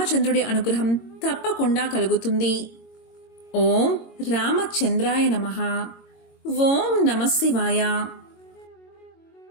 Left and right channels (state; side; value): late; right; 22 ms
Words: అనుగ్రహం తప్పకుండా కలుగుతుంది. ఓం రామచంద్రాయ నమః. ఓం నమః శివాయ.